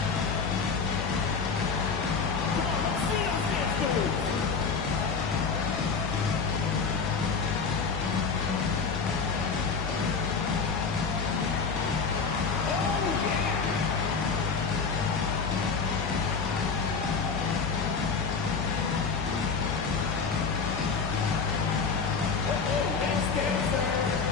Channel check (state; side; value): quieter; right; 5.2 dB